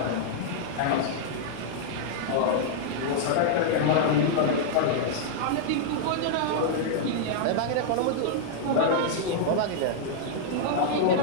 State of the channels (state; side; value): different; both; correlation -0.01